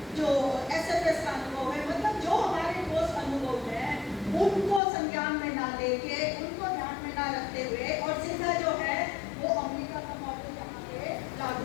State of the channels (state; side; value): drops out; right; at 4.8 s